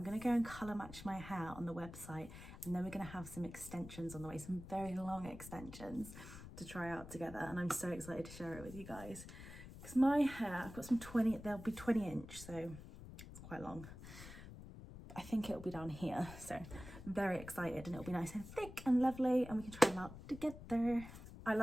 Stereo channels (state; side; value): noise; left; rumble, 13 dB below the sound